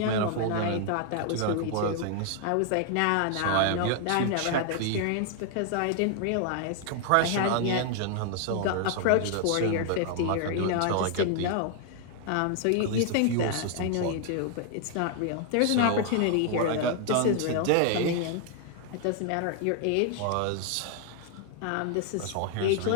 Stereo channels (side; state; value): both; different; correlation 0.00